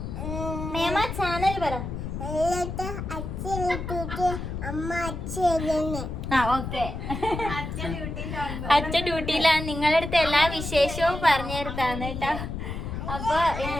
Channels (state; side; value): noise; left; rumble, 6 dB below the sound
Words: മേമ ചാനൽ പറ. ആ ഓക്കെ, അച്ഛൻ ഡ്യൂട്ടിയിലാണ്. നിങ്ങളുടെ അടുത്ത് എല്ലാ വിശേഷവും പറഞ്ഞു തരുത്താണ് കേട്ടോ. അപ്പൊ